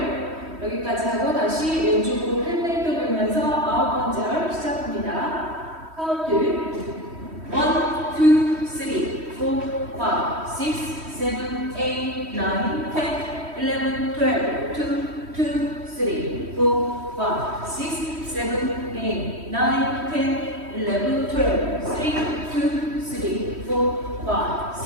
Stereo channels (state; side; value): late; left; 3.1 ms